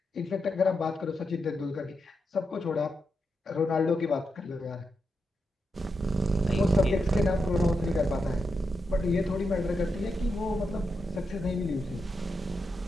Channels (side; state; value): both; normal; correlation 0.85